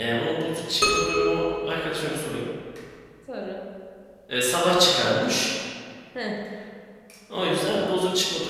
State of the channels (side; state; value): both; identical; correlation 1.00